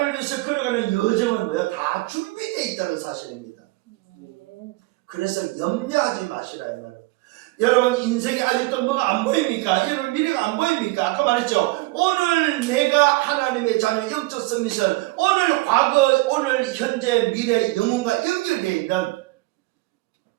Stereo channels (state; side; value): quieter; left; 21.4 dB